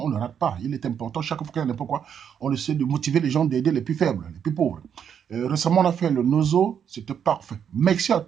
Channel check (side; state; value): left; quieter; 8.1 dB